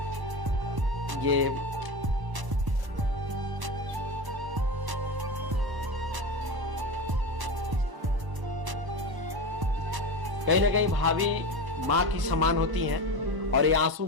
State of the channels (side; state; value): left; late; 1.0 ms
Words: ये कहीं ना कहीं भाभी माँ की समान होती हैं और ये आंसू